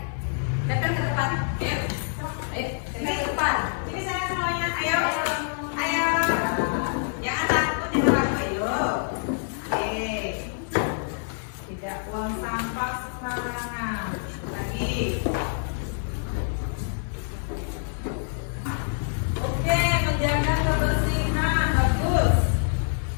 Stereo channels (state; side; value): silent; right; digital silence